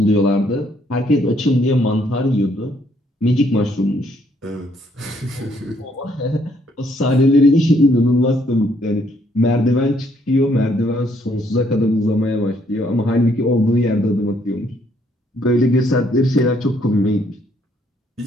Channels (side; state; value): both; normal; correlation 0.68